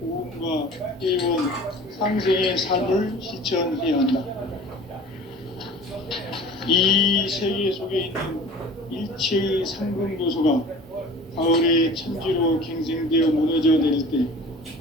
오음과 회원, 상생의 삶을 실천해야 한다. 이 세계 속에 있는 일체의 상금교소가 가을의 천지로 갱생되어 무너져 내릴 때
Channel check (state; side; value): normal; both; correlation 0.43